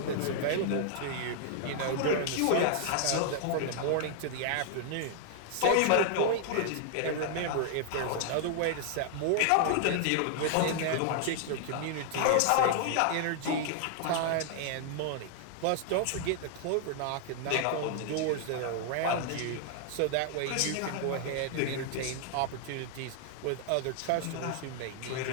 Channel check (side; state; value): both; different; correlation 0.00